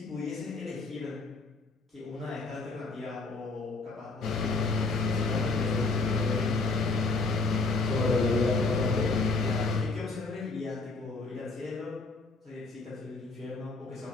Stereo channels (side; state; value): right; quieter; 3.6 dB